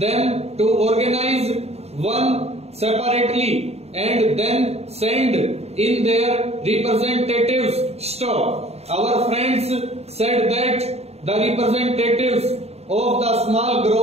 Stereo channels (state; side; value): late; left; 0.30 ms